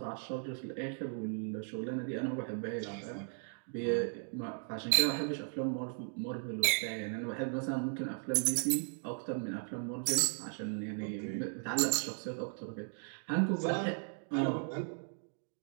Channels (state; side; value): silent; left; 53 dB below the other